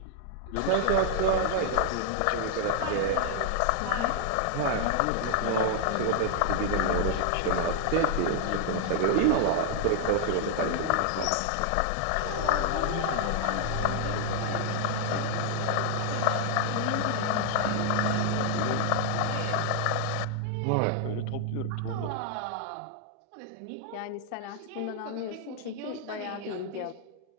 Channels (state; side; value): different; both; correlation 0.00